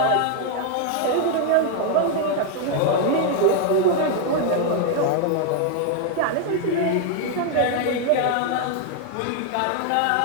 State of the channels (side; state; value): both; different; correlation 0.00